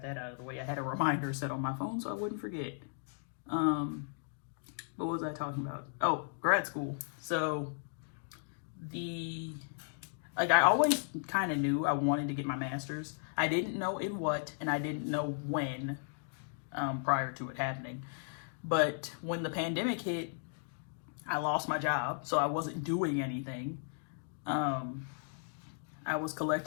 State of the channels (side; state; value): right; silent; digital silence